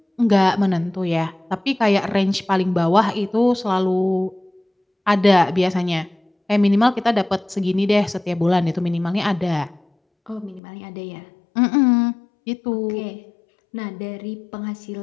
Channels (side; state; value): right; drops out; at 10.6 s